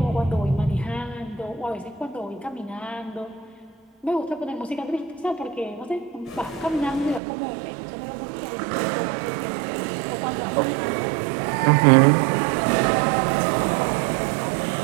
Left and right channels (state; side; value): drops out; left; at 7.2 s